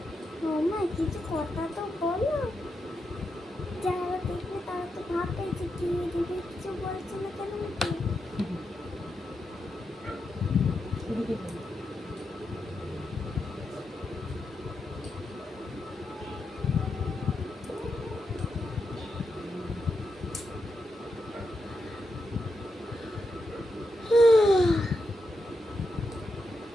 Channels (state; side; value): normal; both; correlation 0.85